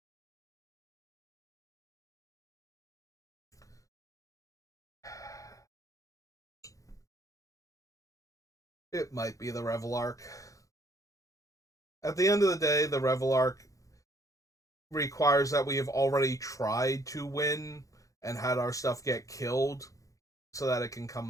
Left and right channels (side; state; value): right; late; 0.16 ms